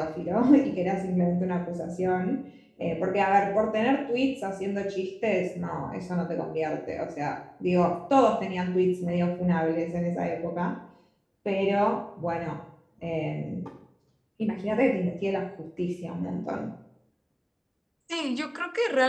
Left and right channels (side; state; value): both; identical; correlation 1.00